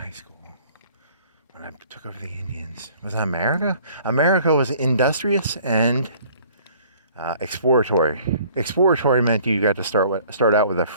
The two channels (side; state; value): both; inverted; correlation -0.54